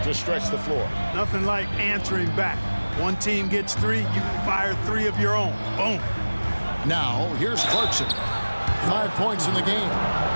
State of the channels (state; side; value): inverted; both; correlation -1.00